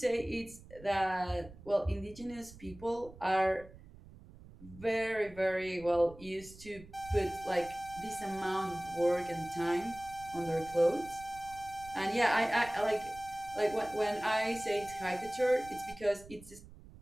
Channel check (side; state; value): right; noise; rumble, 19 dB below the sound